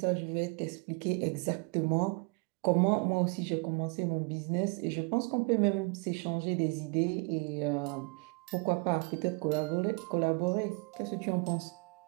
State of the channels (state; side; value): quieter; left; 31.8 dB